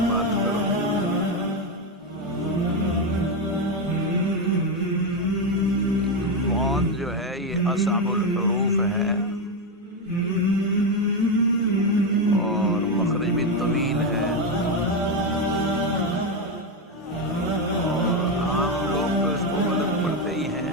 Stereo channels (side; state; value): both; normal; correlation 0.09